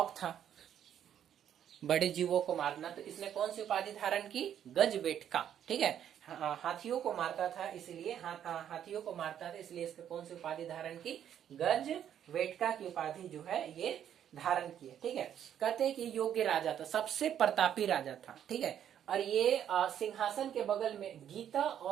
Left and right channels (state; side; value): quieter; left; 9.8 dB